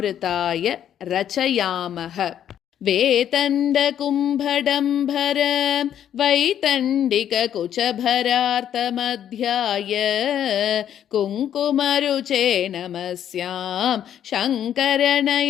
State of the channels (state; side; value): quieter; right; 10.0 dB